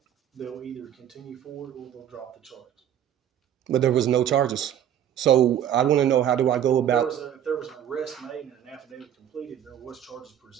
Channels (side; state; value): left; quieter; 10.3 dB